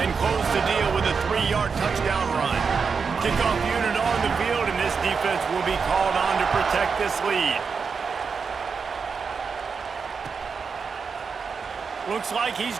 close the deal with a 3-yard touchdown run. Kickoff unit on the field, and this defense will be called on to protect this lead. Looks like he's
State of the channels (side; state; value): left; quieter; 5.5 dB